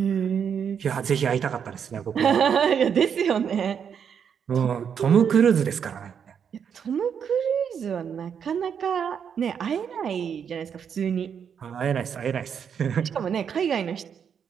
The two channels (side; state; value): left; quieter; 7.5 dB